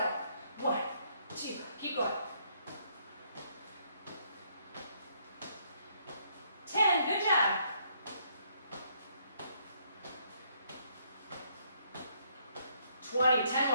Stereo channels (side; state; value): both; inverted; correlation -0.70